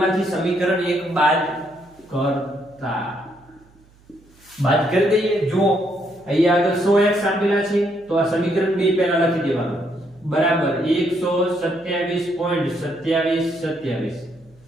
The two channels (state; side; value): noise; right; hum, 29 dB below the sound